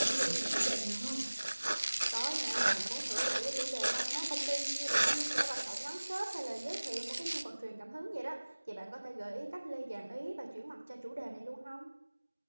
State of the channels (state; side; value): inverted; both; correlation -1.00